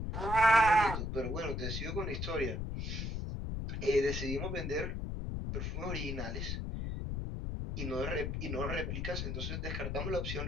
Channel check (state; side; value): noise; left; rumble, 3 dB below the sound